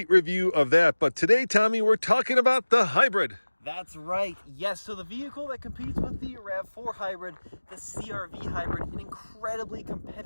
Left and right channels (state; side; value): inverted; both; correlation -1.00